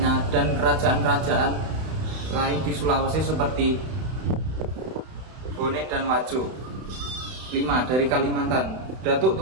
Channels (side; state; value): left; late; 31 ms